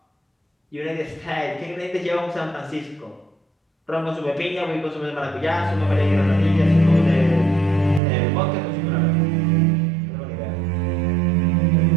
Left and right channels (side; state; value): left; drops out; at 8.0 s